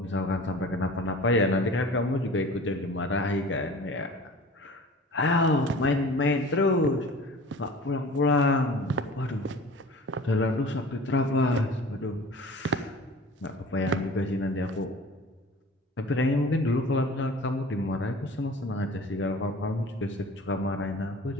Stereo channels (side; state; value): both; normal; correlation 0.42